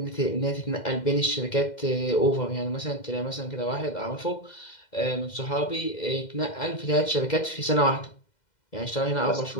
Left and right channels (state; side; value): late; right; 2.0 ms